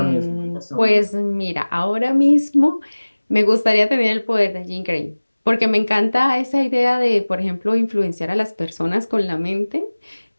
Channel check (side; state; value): both; inverted; correlation -1.00